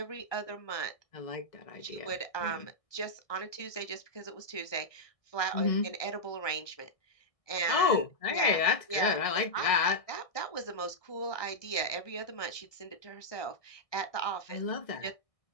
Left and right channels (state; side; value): late; right; 1.6 ms